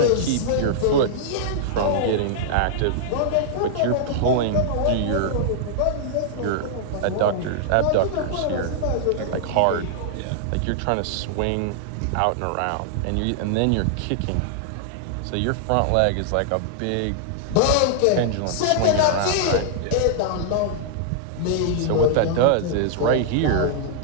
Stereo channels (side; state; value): both; different; correlation -0.01